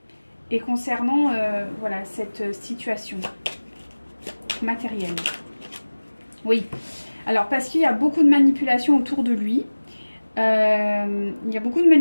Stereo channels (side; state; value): both; inverted; correlation -1.00